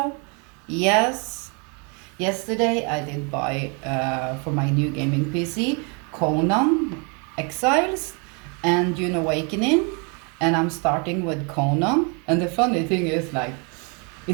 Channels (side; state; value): left; quieter; 34.4 dB